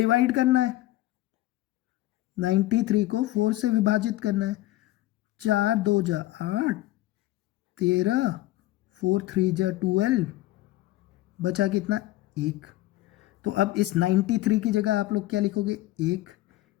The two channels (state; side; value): quieter; right; 16.6 dB